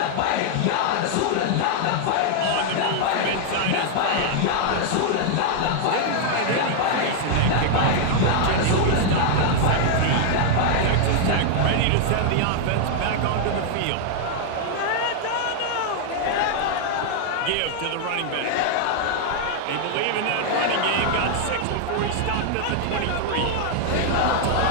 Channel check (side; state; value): both; different; correlation -0.01